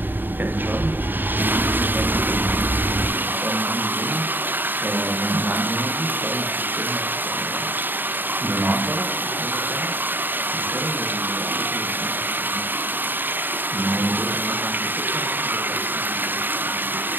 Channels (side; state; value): left; late; 0.093 ms